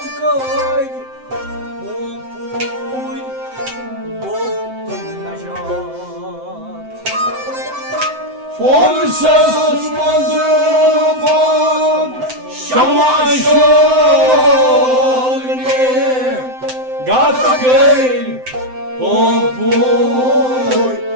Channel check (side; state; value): left; late; 7.8 ms